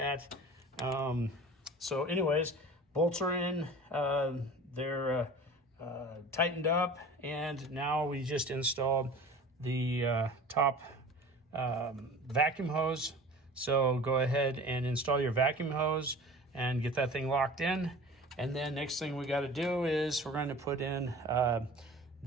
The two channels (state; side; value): normal; both; correlation 0.40